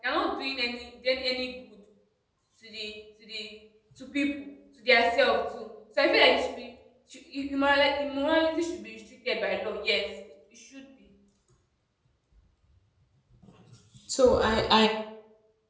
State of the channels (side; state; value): both; identical; correlation 1.00